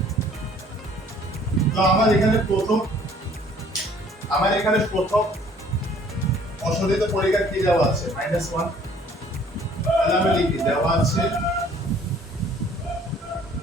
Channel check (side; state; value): both; normal; correlation 0.57